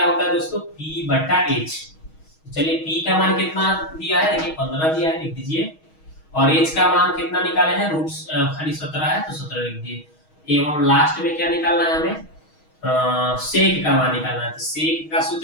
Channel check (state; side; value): late; right; 6.3 ms